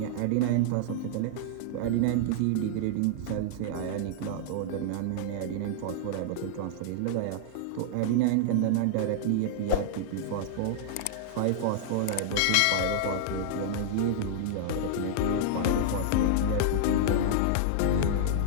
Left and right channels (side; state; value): both; different; correlation -0.01